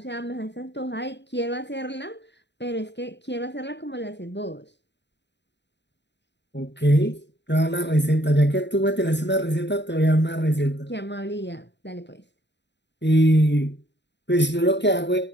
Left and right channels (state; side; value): late; right; 0.51 ms